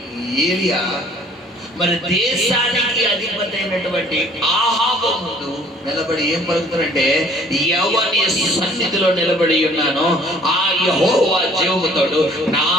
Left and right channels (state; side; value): normal; both; correlation 0.55